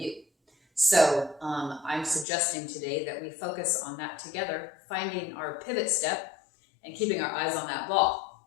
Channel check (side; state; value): right; drops out; at 2.2 s